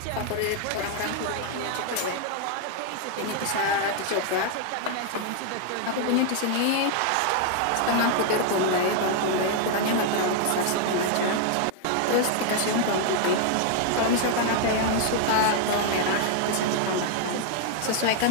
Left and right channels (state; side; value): different; both; correlation 0.00